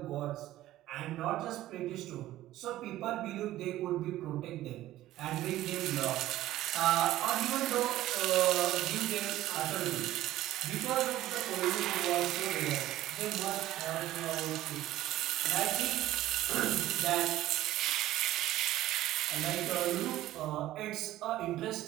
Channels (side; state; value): left; quieter; 14.8 dB